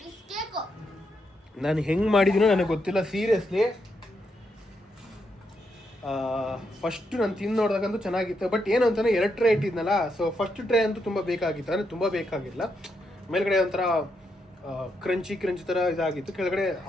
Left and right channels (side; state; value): both; normal; correlation 0.80